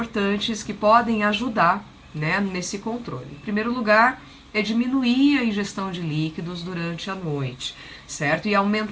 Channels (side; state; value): both; identical; correlation 1.00